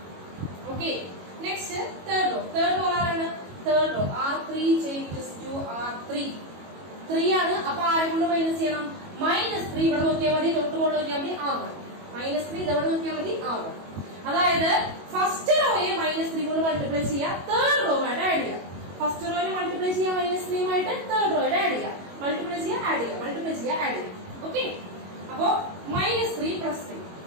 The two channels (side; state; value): left; late; 22 ms